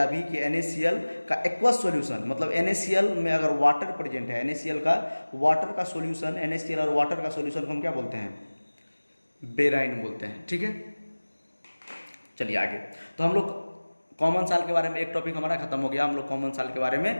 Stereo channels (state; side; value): inverted; both; correlation -1.00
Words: अभी कि NaCl का एक्वस सॉल्यूशन, मतलब NaCl में अगर वाटर प्रेजेंट है, NaCl का वाटर का सॉल्यूशन, NaCl और वाटर का सॉल्यूशन को हम क्या बोलते हैं, बेराइन बोलते हैं, ठीक है। चलिए आगे, तो हम लोग कॉमन साल्ट के बारे में एक टॉपिक हमारा खत्म हो गया। हम लोग कॉमन साल्ट के बारे